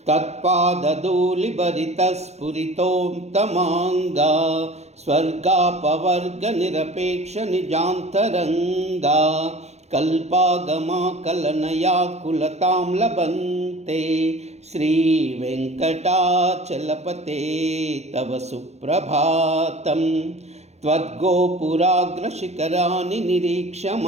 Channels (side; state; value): left; late; 0.32 ms